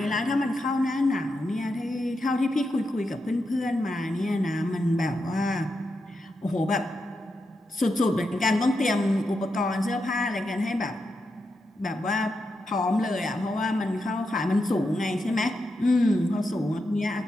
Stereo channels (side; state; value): both; normal; correlation 0.86